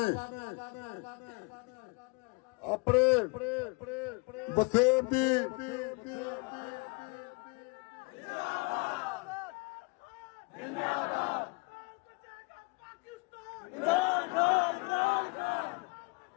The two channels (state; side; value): quieter; right; 29.3 dB